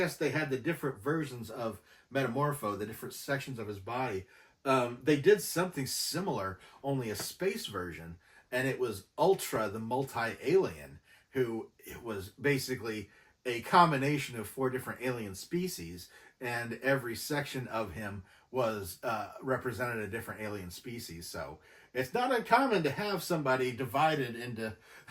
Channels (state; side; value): identical; both; correlation 1.00